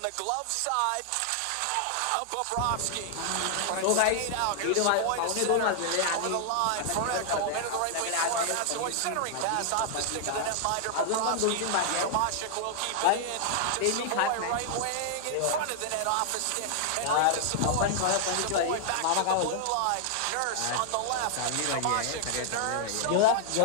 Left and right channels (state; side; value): different; both; correlation 0.00